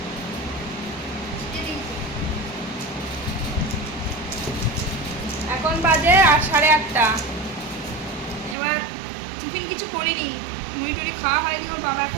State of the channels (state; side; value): drops out; left; at 8.6 s